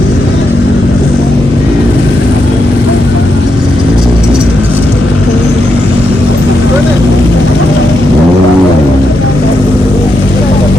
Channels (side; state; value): both; normal; correlation 0.83